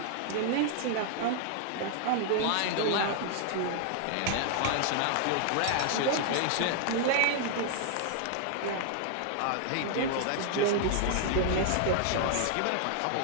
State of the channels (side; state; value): both; different; correlation -0.01